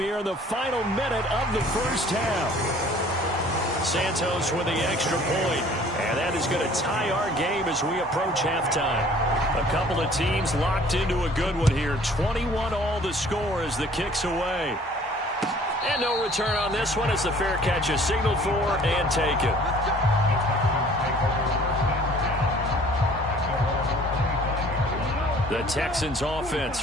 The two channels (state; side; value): normal; both; correlation 0.53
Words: in the final minute of the first half. Santos with the extra point, and that is going to tie our game as we approach halftime. A couple of teams locked into a good one here. 21-all the score as the kick's away. And no return on this one as the fair catch is signaled for and taken. The Texans